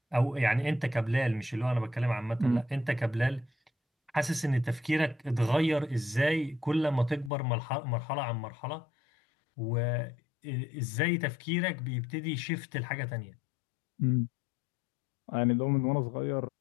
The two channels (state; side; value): drops out; right; at 7.3 s